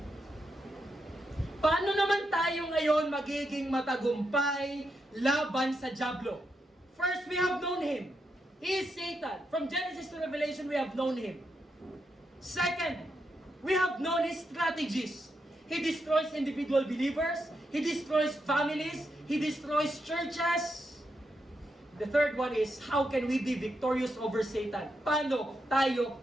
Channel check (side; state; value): both; normal; correlation 0.83